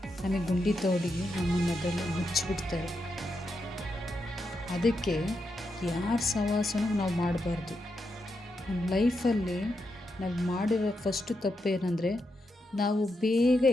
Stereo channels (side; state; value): both; normal; correlation 0.84